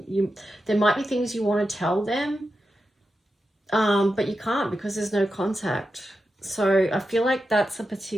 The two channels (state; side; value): normal; both; correlation 0.89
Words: There might be things you want to tell them, but you can't because there's no contact. So I feel like that's a